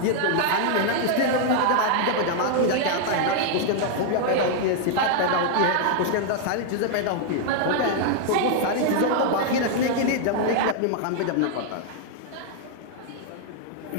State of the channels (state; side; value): different; both; correlation 0.00